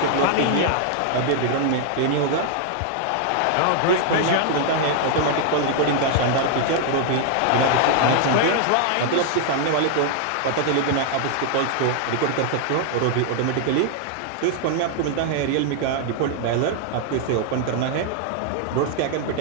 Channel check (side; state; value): both; different; correlation 0.00